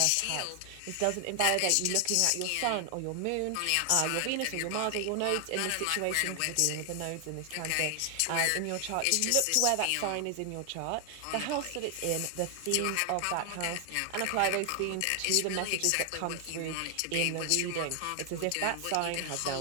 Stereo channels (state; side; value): different; both; correlation 0.00